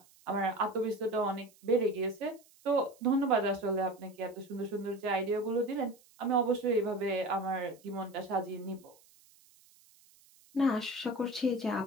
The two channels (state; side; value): noise; right; hiss, 28 dB below the sound